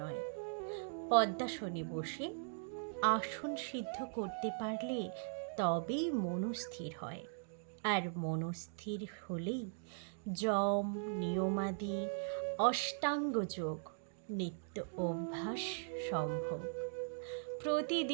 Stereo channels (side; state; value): left; silent; digital silence